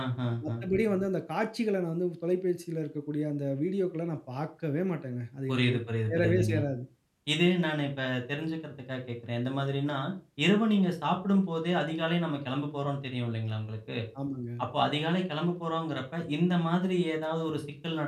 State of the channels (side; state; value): both; identical; correlation 1.00